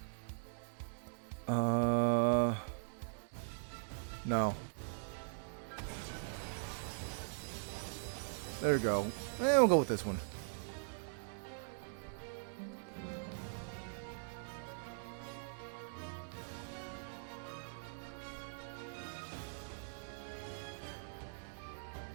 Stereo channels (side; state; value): left; silent; digital silence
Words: No. There we go. We'll go with this one.